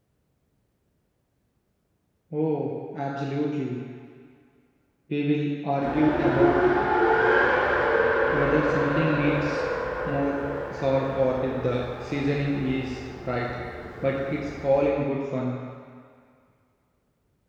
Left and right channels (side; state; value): both; identical; correlation 1.00